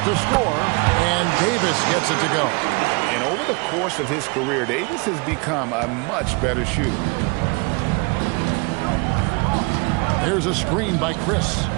to score, and Davis gets it to go. And over the course of his career, Davis has become a much better shooter. There's a screen by Chris.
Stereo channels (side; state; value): left; quieter; 29.7 dB